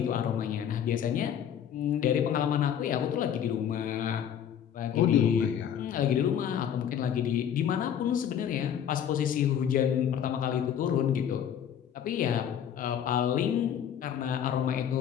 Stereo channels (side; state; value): right; quieter; 9.1 dB